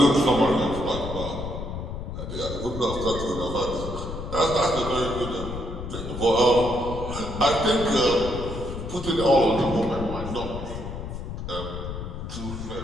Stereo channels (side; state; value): left; noise; rumble, 7 dB below the sound